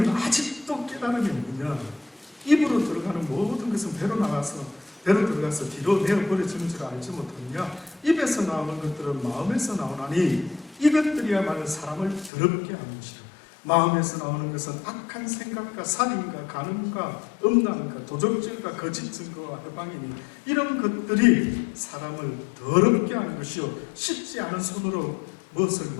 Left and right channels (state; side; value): drops out; right; at 12.3 s